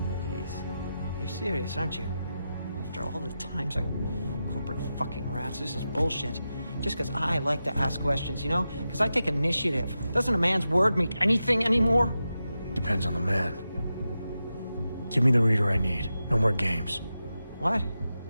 Jeez. You're serious, aren't you? After all the times corporate fucking rats, this is bullshit. Just because I like to ask questions, you know? Because I take initiative. Doesn't a man's word mean anything anymore? Depends on the man. Give me the reader I need. No more games. What?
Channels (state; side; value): inverted; both; correlation -0.90